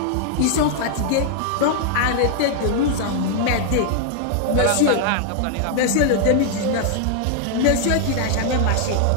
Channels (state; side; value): different; both; correlation 0.00